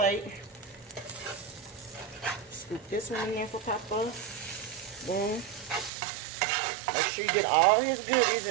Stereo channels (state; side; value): drops out; left; at 5.9 s